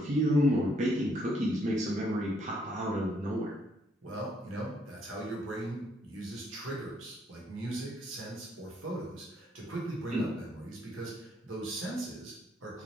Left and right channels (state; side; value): normal; both; correlation 0.70